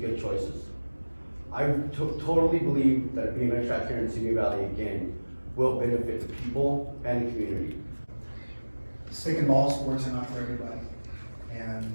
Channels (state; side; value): inverted; both; correlation -1.00